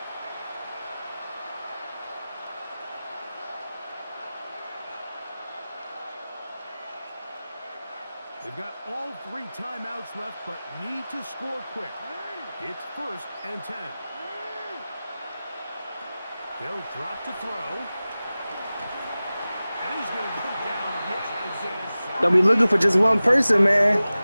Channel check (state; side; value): inverted; both; correlation -0.97